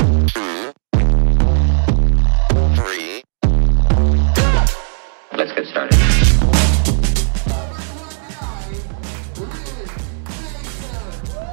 2, 3. Let's get started.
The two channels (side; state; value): left; silent; digital silence